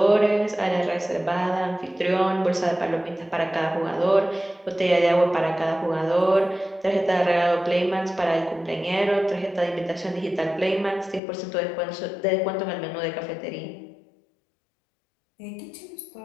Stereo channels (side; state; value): right; drops out; at 11.2 s